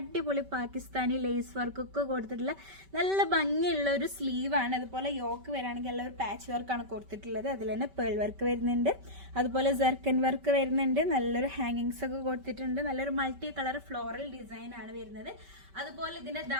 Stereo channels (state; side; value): late; left; 5.2 ms